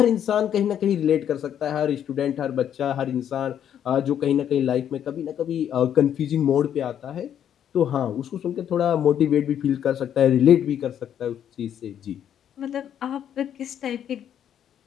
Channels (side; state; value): right; quieter; 9.6 dB